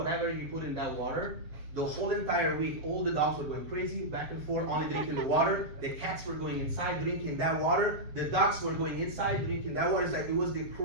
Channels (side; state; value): left; late; 6.8 ms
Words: you put in that water, the whole entire week, all the dogs were going crazy, back and forth, only drinking the water. The cats were going inside, drinking that water. The ducks were going inside, drinking that water. It's like, it was the